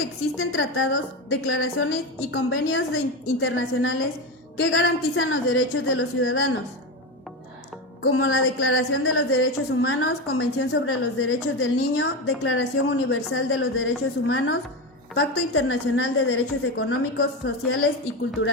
existen tratados, declaraciones y convenios internacionales que garantizan los derechos de los ciudadanos, como la Declaración de los Derechos Humanos, Convención sobre los Derechos del Niño, Declaración Universal de los Derechos Humanos, Pacto Internacional de Derechos Económicos, Sociales y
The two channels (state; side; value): normal; both; correlation 0.17